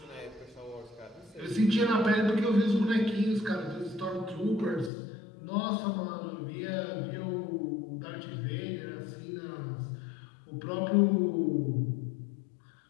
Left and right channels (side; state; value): right; drops out; at 4.9 s